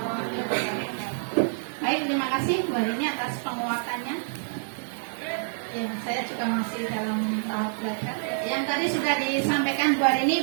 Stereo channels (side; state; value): left; silent; digital silence